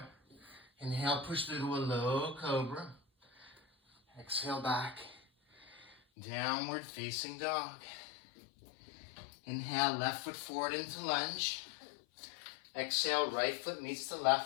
Inhale, push through to a low cobra. Exhale, back, downward facing dog. Inhale, left foot forward into lunge. Exhale, right foot meets the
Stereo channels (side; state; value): right; drops out; at 6.0 s